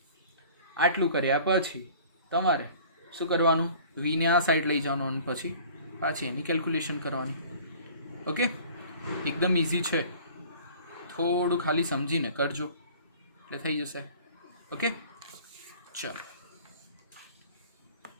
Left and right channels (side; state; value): both; inverted; correlation -0.48